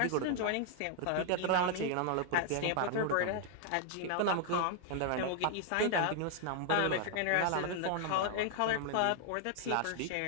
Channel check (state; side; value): different; both; correlation 0.00